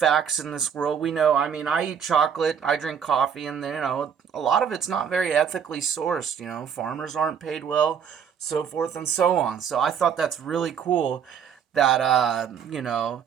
in this world. We know, I eat chocolate, I drink coffee, and, a lot of it's not very ethically sourced. Farmers aren't paid well, so forth and so on. So I thought that's really cool that,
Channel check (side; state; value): left; quieter; 7.7 dB